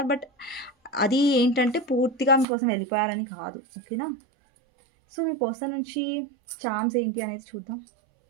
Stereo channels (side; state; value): left; drops out; at 2.5 s